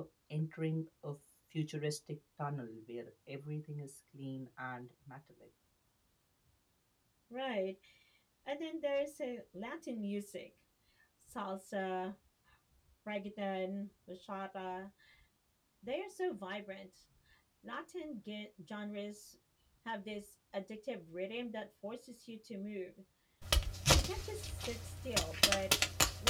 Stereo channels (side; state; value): both; identical; correlation 1.00